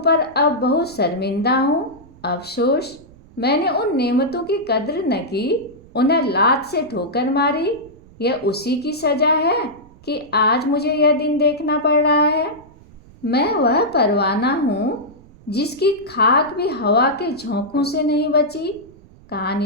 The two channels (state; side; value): noise; right; rumble, 24 dB below the sound